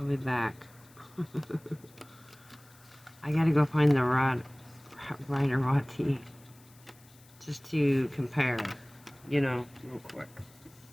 be back. I gotta go find the Rider Watt-T just to compare, you know, real quick.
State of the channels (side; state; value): left; noise; hiss, 26 dB below the sound